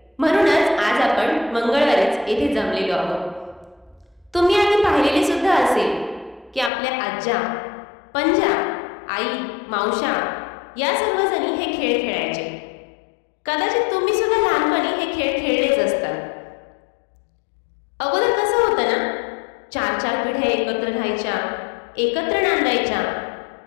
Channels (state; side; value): drops out; right; at 6.7 s